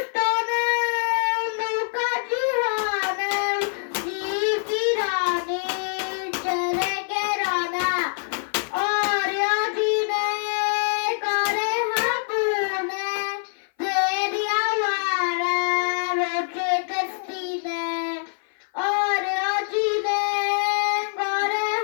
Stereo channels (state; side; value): silent; right; 58 dB below the other